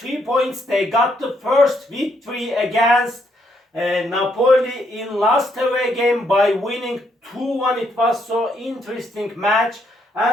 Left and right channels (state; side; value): normal; both; correlation 0.74